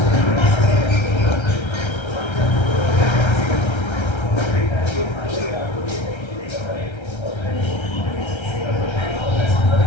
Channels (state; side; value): late; right; 1.3 ms